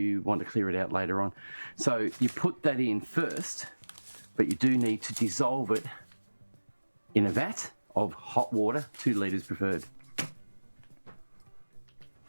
want to clear it out later on. So you put that in first, but you do need to dissolve it in a vat of hot water, 2 litres preferred.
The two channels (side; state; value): both; inverted; correlation -1.00